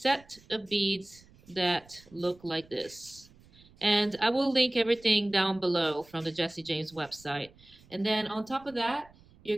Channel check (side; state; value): right; noise; rumble, 26 dB below the sound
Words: of beads that look like this. And I will link everything down below from the Jesse James website. And then on top of that, you're